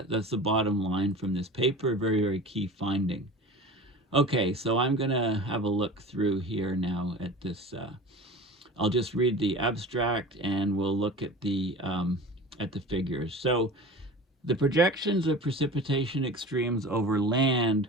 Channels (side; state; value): both; normal; correlation 0.36